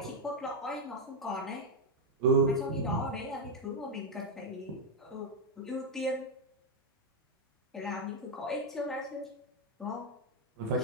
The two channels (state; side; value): normal; both; correlation 0.02